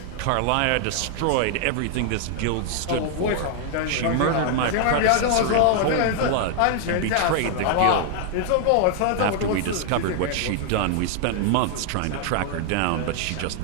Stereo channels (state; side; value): different; both; correlation 0.00